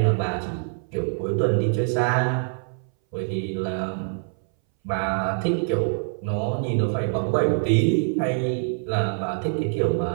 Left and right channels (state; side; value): silent; left; 60 dB below the other